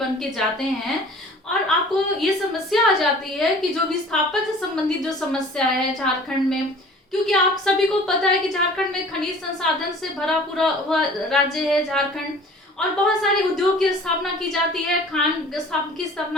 के जाते हैं और आपको ये समस्या आ जाती है कि जो विस्थापन से संबंधित जो समस्या है झारखंड में, क्योंकि आप सभी को पता है कि झारखंड में खनिज संसाधन से भरा पूरा हुआ राज्य है झारखंड, और बहुत सारे उद्योग की स्थापना की जाती है, खान की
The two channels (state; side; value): normal; both; correlation 0.47